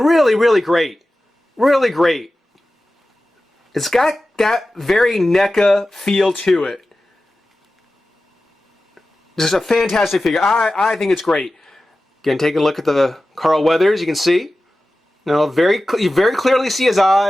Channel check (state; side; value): normal; both; correlation 0.95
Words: great. Really great. It's got that very NECA feel to it. Just a fantastic figure. I think it's great. Again, taking a look at the Carl Weathers, you can see. You very clearly see his